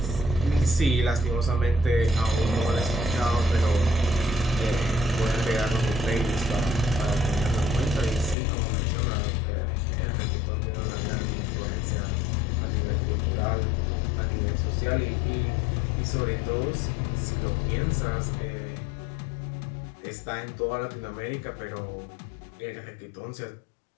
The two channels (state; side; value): drops out; right; at 8.3 s